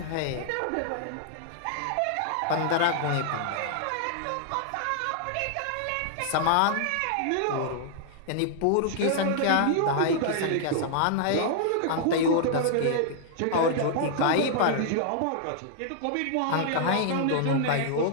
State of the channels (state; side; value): different; both; correlation -0.01